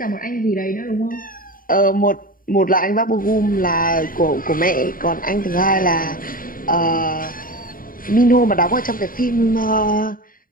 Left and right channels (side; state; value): right; late; 0.41 ms